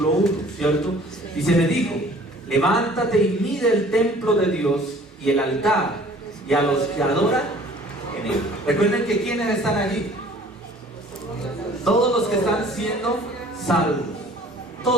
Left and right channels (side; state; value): both; normal; correlation 0.51